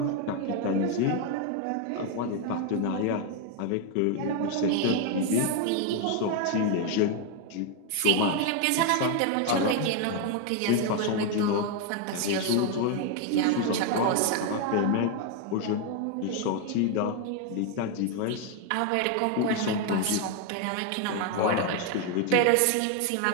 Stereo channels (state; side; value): different; both; correlation 0.01